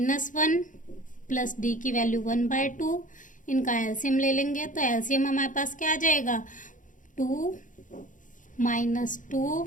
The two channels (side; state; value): right; late; 0.38 ms